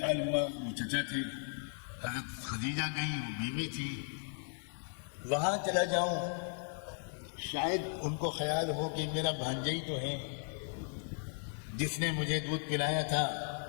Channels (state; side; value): silent; right; 54 dB below the other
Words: ہوا، وہ چچا تھے، حضرت خدیجہ گئی، وہ بیوی تھی، وہاں چلا جاؤں، شاید ان کو خیال ہو کہ میرا بھانجا ہی تو ہے جس نے مجھے دودھ پلایا تھا،